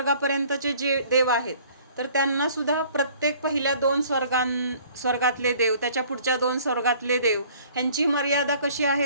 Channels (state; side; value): inverted; both; correlation -0.54